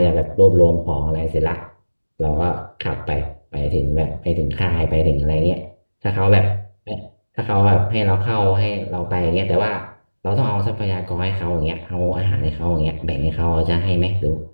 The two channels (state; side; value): inverted; both; correlation -1.00